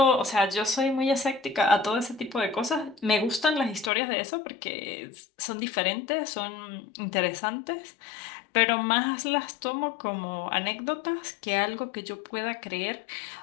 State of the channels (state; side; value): drops out; right; at 3.9 s